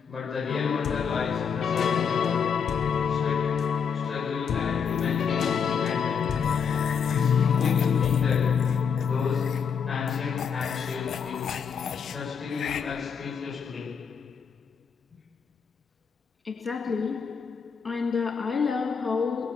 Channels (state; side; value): quieter; right; 6.6 dB